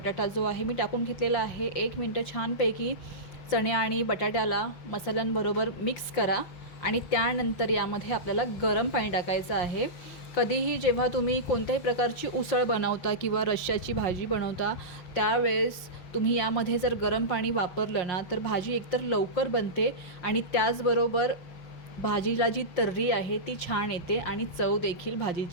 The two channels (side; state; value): right; late; 5.7 ms